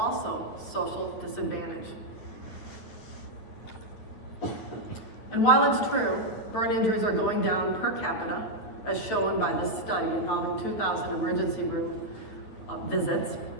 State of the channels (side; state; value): right; late; 9.1 ms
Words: social disadvantage. And while it's true, burn injuries are going down per capita, as shown by this study involving 2,000 emergency room visits,